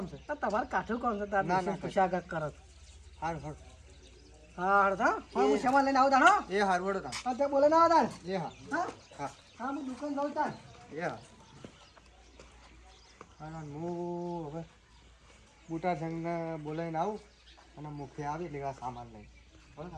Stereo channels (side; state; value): both; identical; correlation 1.00